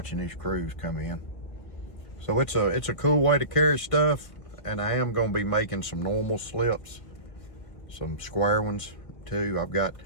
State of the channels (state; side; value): late; right; 1.9 ms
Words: these crews come in. So it's a cool way to carry stuff, and I am going to be making some normal slips, some square ones too.